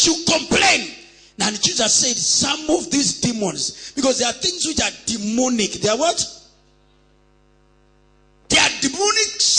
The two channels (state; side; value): identical; both; correlation 1.00